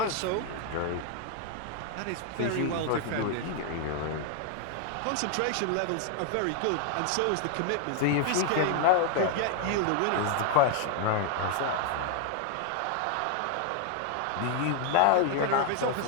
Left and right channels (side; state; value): both; different; correlation 0.01